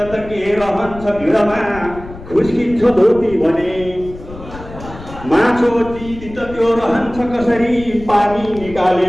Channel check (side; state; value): left; noise; rumble, 15 dB below the sound